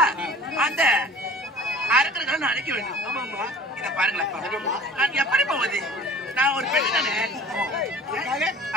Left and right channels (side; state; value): both; normal; correlation 0.45